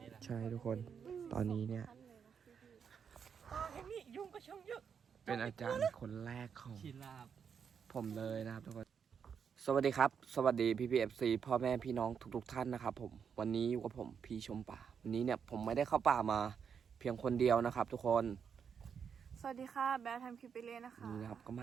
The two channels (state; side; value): quieter; left; 7.0 dB